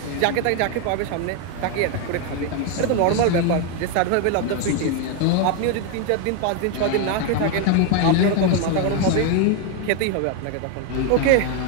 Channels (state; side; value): different; both; correlation 0.01